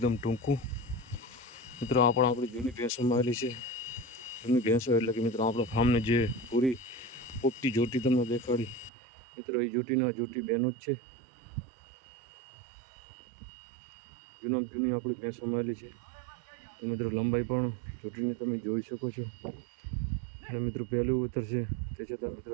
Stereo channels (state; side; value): drops out; left; at 8.9 s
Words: ટૂંકું. મિત્રો આ પણ આપણી જૂની ભેંસોમાં આવેલી છે. જૂની ભેંસો એટલે કે મિત્રો આપણા ફાર્મને જે પૂરી પોપટી જોટી તમને દેખાડી, મિત્રો એ જોટી બહેનો જ છે. જૂની આપણી ભેંસોમાં આવેલી છે. તો મિત્રો લંબાઈ પણ જોટીની તમે જોઈ શકો છો. અને મિત્રો પહેલું ઉતરશે તે છતાં મિત્રો